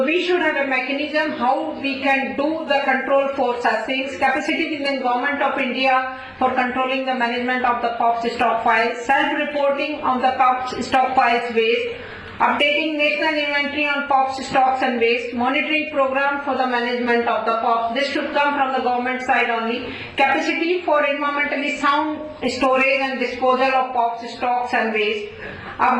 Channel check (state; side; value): identical; both; correlation 1.00